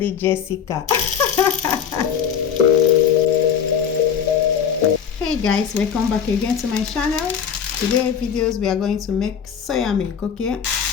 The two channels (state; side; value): quieter; right; 7.7 dB